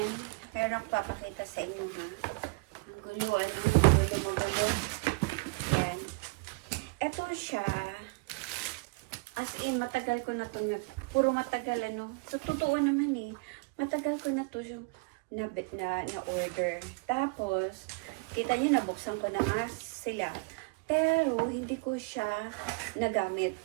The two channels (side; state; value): left; quieter; 27.5 dB